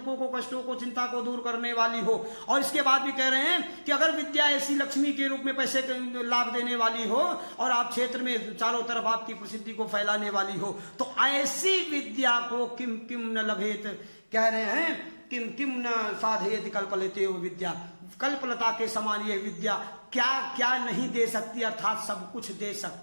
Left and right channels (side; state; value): both; inverted; correlation -1.00